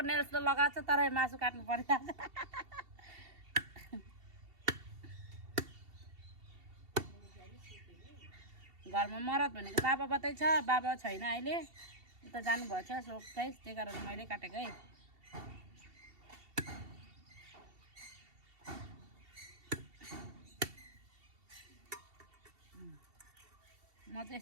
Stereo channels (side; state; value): left; late; 2.7 ms